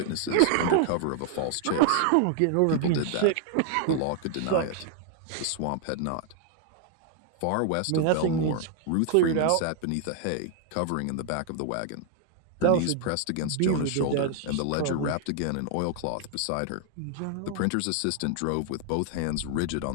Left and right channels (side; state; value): both; different; correlation 0.00